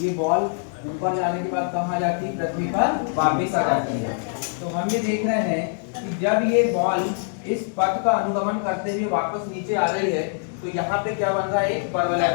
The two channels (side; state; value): right; silent; 63 dB below the other